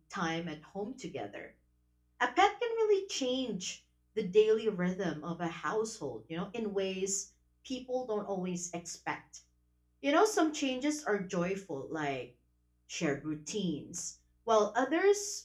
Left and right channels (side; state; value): both; identical; correlation 1.00